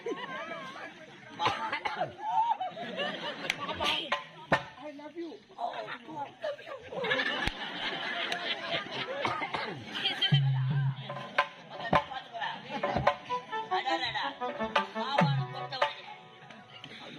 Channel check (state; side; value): identical; both; correlation 1.00